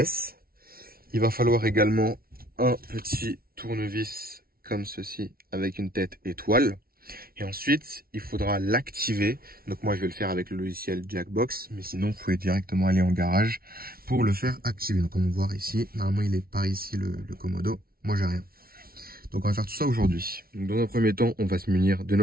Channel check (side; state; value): left; late; 0.43 ms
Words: Il va falloir également un petit tournevis comme ceci avec une tête étoile. Et ensuite, il faudra l'activer. Donc moi, je vais le faire avec le logiciel Jackbox. Mais sinon, vous pouvez directement aller en garage pour le faire activer. Donc comme on voit ici, normalement, il est par ici le commodo. Moi, j'ai rien. Donc on va faire tout ça aujourd'hui. Dans un premier temps, on va se munir de